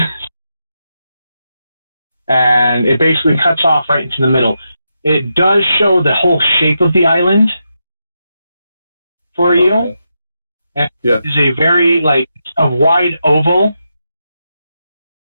And it basically cuts off right into the middle. It does show the whole shape of the island for you. Okay. And Yeah. It's a very a wide oval.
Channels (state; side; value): inverted; both; correlation -0.86